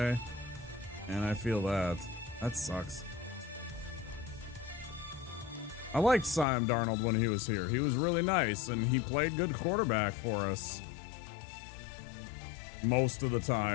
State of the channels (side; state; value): right; drops out; at 6.5 s